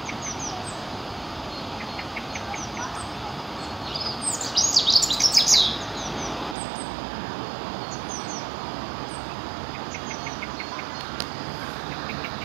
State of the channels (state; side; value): drops out; left; at 6.6 s